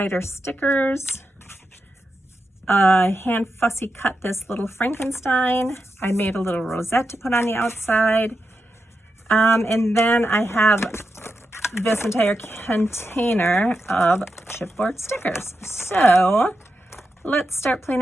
stickers, hand fussy cut this little Frankenstein. I made a little rosette to put on the outside. And then I have this entire container of chipboard stickers. So let's start playing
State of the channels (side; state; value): both; normal; correlation 0.87